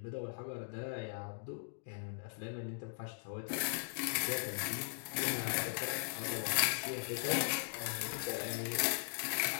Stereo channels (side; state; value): right; silent; digital silence